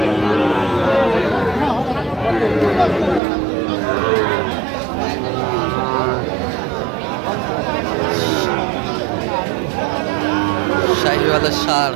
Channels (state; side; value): drops out; left; at 3.2 s